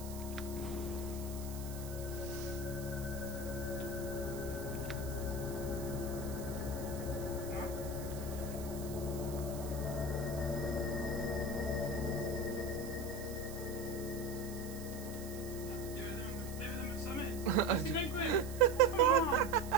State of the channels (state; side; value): noise; right; hiss, 14 dB below the sound